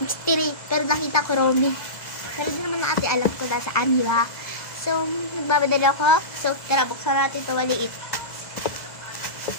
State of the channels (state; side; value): late; right; 2.0 ms